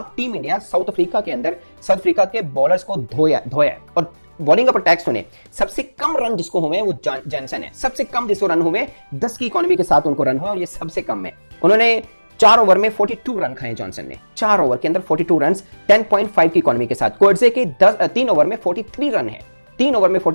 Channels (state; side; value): inverted; both; correlation -1.00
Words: टीम इंडिया साउथ अफ्रीका के अंदर साउथ अफ्रीका के बॉलर्स को धोया और बॉलिंग पर टैक्स सुने। सबसे कम रन जिसको हुए वो जॉनसन है, सबसे कम जिसको रन हुए 10 की इकोनॉमी के साथ उनको रन हुआ, और ये सबसे कम है। उन्होंने 4 ओवर में 42 रन खाए जॉनसन ने, 4 ओवर के अंदर 42 रन 10.5 की इकोनॉमी के साथ। कोर्जे के 3 ओवर में 43 रन है, 3 ओवर में